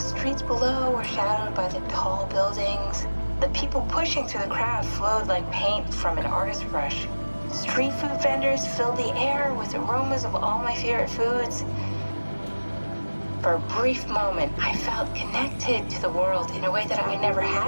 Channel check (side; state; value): both; inverted; correlation -1.00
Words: below were shadowed by the tall buildings. The people pushing through the crowd flowed like paint from an artist's brush. Street food vendors filled the air with aromas of all my favorite foods. For a brief moment, I felt connected to the world in a way that I never